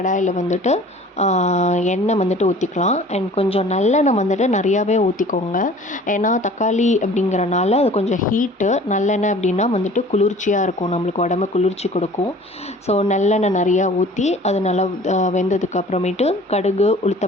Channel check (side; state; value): both; normal; correlation 0.47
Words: வந்துட்டு எண்ணெய் வந்துட்டு ஊற்றிக்கலாம். அண்ட் கொஞ்சம் நல்லெண்ணெய் வந்துட்டு நிறையாவே ஊற்றிக்கோங்க. ஏன்னா தக்காளி அப்படிங்கிறனால அது கொஞ்சம் ஹீட்டு. நல்லெண்ணெய் அப்படின்னா வந்துட்டு குளிர்ச்சியாக இருக்கும், நம்மளுக்கு உடம்பு குளிர்ச்சி கொடுக்கும். ஸோ நல்லெண்ணெய் நிறையா ஊற்றி அது நல்லா வெந்ததுக்கு அப்புறமேட்டு கடுகு,